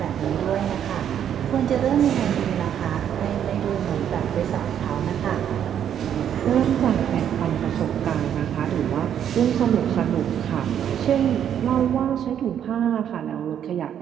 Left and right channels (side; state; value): left; quieter; 9.4 dB